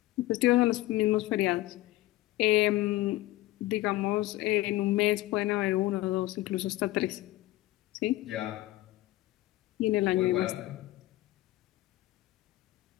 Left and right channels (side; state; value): right; quieter; 17.0 dB